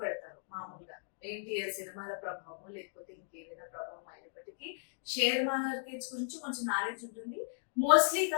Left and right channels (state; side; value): silent; right; digital silence